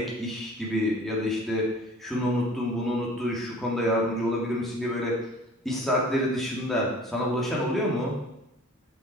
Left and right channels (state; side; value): normal; both; correlation 0.47